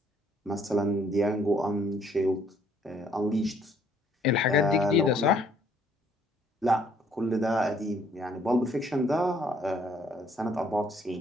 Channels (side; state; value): both; normal; correlation 0.64